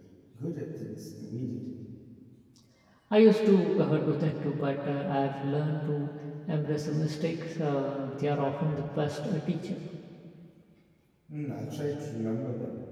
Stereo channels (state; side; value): identical; both; correlation 1.00